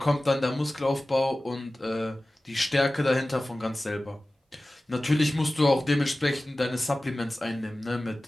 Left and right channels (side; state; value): both; normal; correlation 0.96